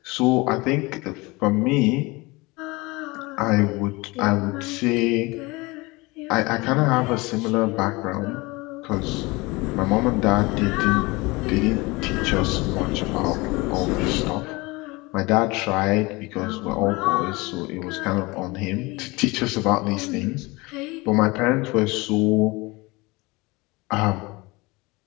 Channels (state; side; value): quieter; right; 23.9 dB